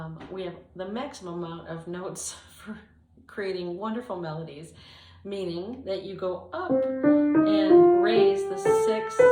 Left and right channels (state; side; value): identical; both; correlation 1.00